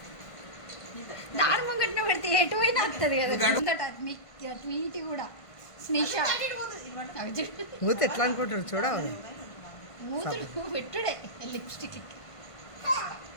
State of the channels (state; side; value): late; right; 1.5 ms